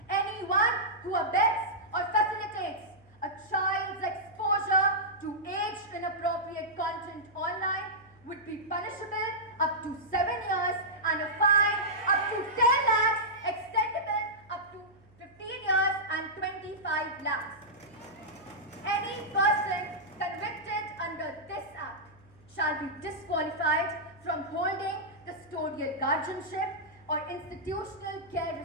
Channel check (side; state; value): right; noise; hum, 28 dB below the sound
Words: who abets or facilitates a child's exposure to age-inappropriate content online would be punishable up to 7 years and a fine up to 10 lakhs, extendable up to 15 years and 25 lakhs. Any person convicted under this Act shall be disqualified from holding custodial guardianship or institutional